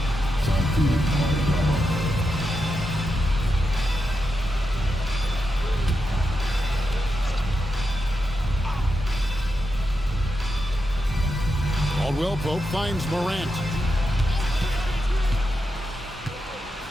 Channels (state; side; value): normal; both; correlation 0.87